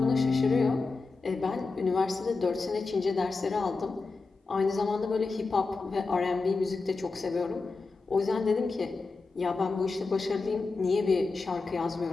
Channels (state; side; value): quieter; right; 4.0 dB